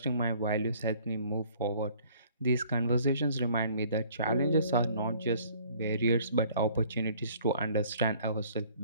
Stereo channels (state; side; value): inverted; both; correlation -0.56